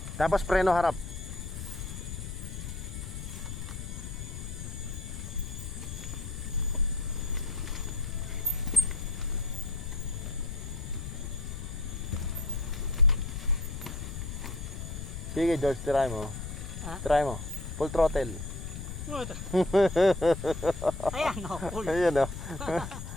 Tapos preno harap. Sige George, try mo. Ha? Try mo. Full throttle. Ayan, no, cool. Ayun o.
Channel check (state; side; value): noise; left; rumble, 7 dB below the sound